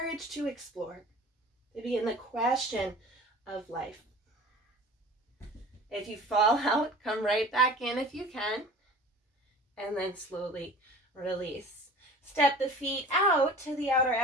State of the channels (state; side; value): normal; both; correlation 0.42